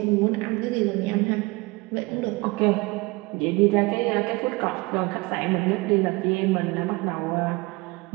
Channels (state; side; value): quieter; left; 24.3 dB